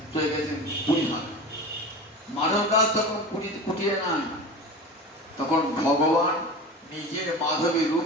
চলে গেছেন পুরীহাট। মাধব দাস তখন কুটিরে নাই, তখন ভগবান নিজের মাধবের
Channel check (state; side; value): normal; both; correlation 0.31